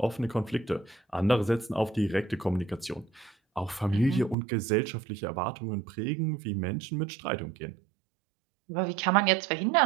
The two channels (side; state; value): left; drops out; at 4.4 s